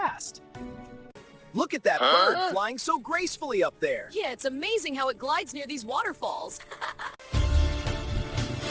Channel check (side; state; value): both; identical; correlation 1.00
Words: Look at that bird flying so gracefully up there. Yeah, it's amazing how it glides near these waterfalls.